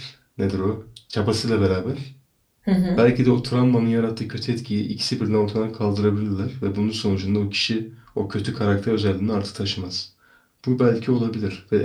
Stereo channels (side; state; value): both; identical; correlation 1.00